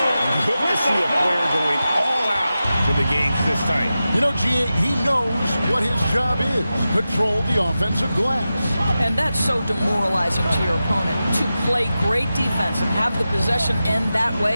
Good to see a player going all out for the games this time. You know, G.A., he knows what his job is. Control the offensive glass. And that's so demoralizing to your opponent. To play great defense and have the possession end that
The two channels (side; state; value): both; inverted; correlation -0.93